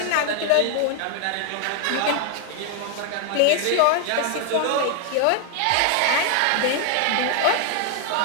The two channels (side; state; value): both; different; correlation 0.00